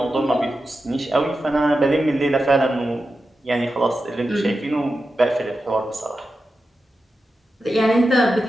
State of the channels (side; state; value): both; normal; correlation 0.91